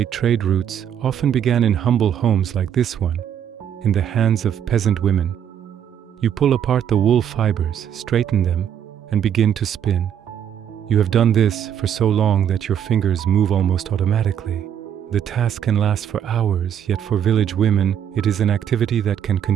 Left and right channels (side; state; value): left; quieter; 9.2 dB